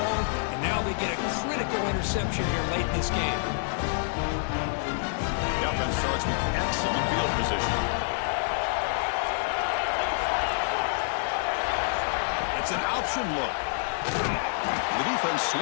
and now they get a critical interception here late in this game. The offense starts with excellent field position. It's an option look. The defense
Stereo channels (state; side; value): silent; right; digital silence